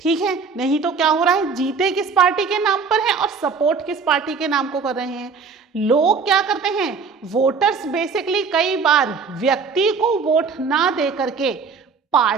है, नहीं तो क्या हो रहा है, जीते किस पार्टी के नाम पर है और सपोर्ट किस पार्टी के नाम को कर रहे हैं। लोग क्या करते हैं, वोटर्स बेसिकली कई बार व्यक्ति को वोट ना दे करके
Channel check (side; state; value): left; quieter; 5.3 dB